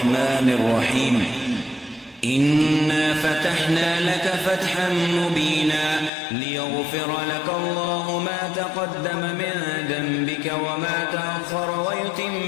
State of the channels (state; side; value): drops out; right; at 6.1 s